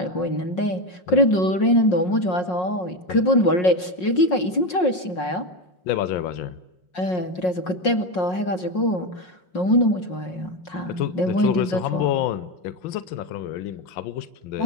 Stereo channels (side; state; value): right; late; 5.5 ms